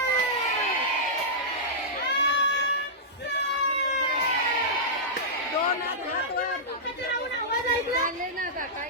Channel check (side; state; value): both; normal; correlation -0.13